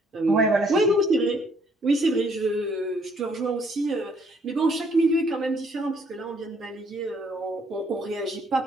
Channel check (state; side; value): normal; both; correlation 0.65